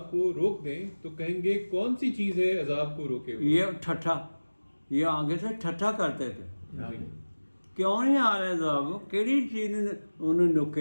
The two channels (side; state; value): both; inverted; correlation -1.00